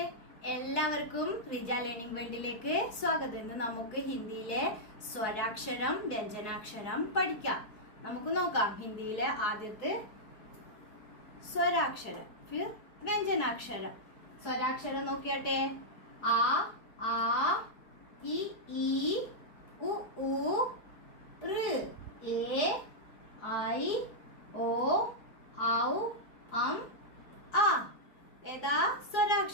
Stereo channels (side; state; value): right; late; 4.7 ms